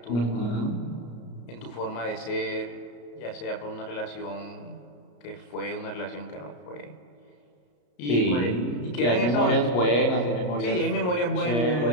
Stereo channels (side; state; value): right; late; 34 ms